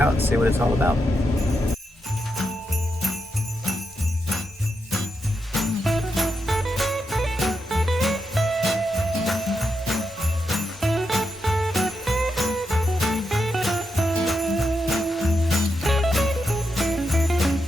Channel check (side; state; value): both; normal; correlation 0.85